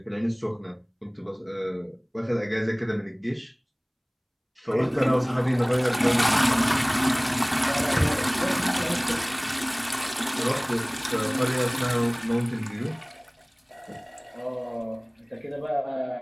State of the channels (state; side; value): identical; both; correlation 1.00